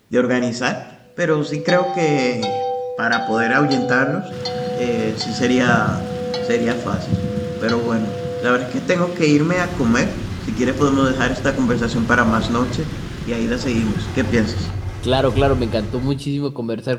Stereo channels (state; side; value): identical; both; correlation 1.00